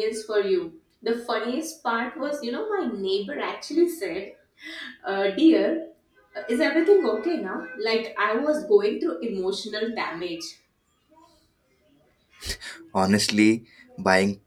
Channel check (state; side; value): identical; both; correlation 1.00